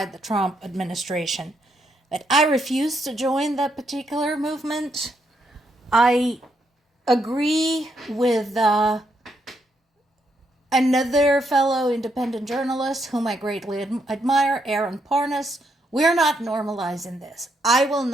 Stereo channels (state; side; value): normal; both; correlation 0.77